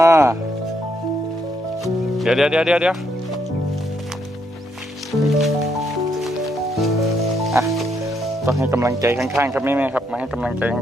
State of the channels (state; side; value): normal; both; correlation 0.75